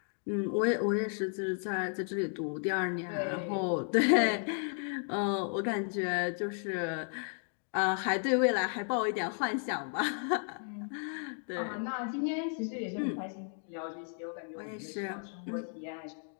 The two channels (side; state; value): right; silent; 55 dB below the other